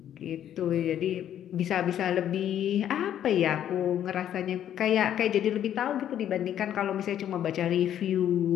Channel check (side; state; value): right; quieter; 10.5 dB